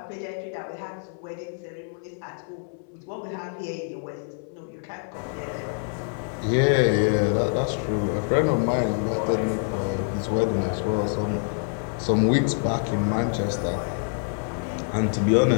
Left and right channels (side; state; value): right; silent; 61 dB below the other